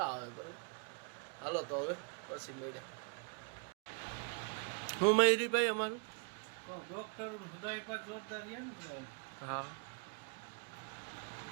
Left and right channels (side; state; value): left; quieter; 38.9 dB